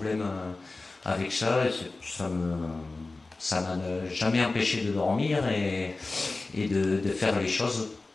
avec ça. Ça m'a jamais empêché de dormir et de faire les choses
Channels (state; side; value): quieter; right; 3.4 dB